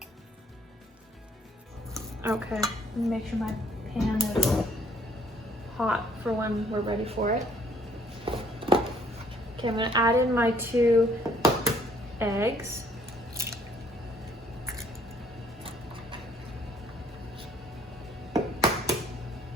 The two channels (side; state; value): both; normal; correlation 0.62